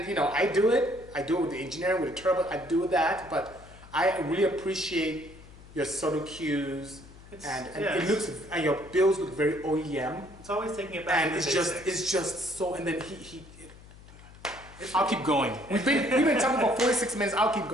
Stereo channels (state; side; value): noise; left; hum, 20 dB below the sound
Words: you know, I do it with the engineering, with the turbo. I do that, but I really appreciate your subtle cues, and it looks, and your builds look very OEM. It's always taking it back. And it's just so. And then I'll keep going. We've been talking about 46 minutes. I'll keep